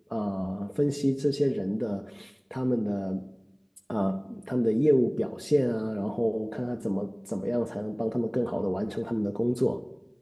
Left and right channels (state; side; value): identical; both; correlation 1.00